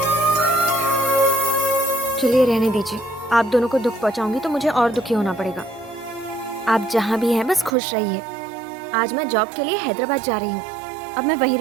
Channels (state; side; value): drops out; left; at 7.8 s